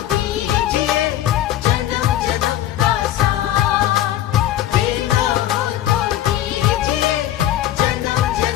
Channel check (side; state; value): right; quieter; 12.8 dB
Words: दीजिए जन्म जन्म का साथ। देना हो तो दीजिए जन्म